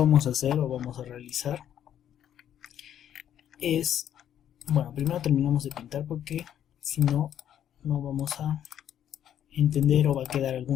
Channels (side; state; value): right; quieter; 10.3 dB